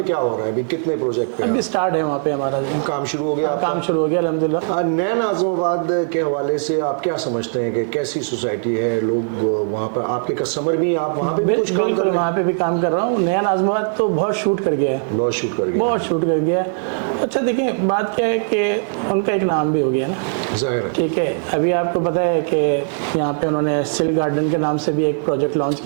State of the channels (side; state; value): left; silent; digital silence